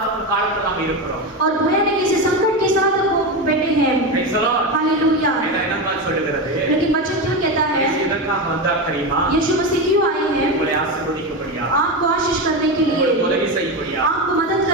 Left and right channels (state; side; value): normal; both; correlation 0.17